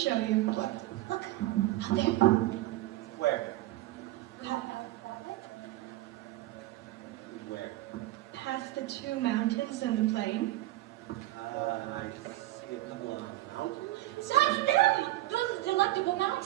you. What? Look, out there. Where? Where? Past the 2 mountains and the plain. I see a couple of mountains. Shine them! Those are delectable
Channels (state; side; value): quieter; left; 16.8 dB